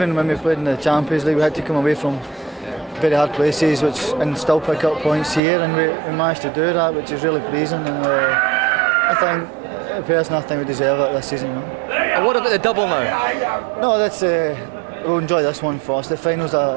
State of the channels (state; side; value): drops out; left; at 5.4 s